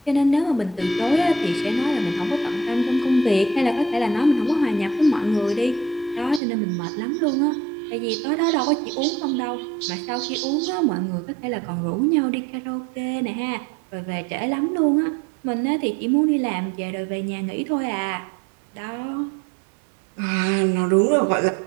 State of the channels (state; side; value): drops out; left; at 6.4 s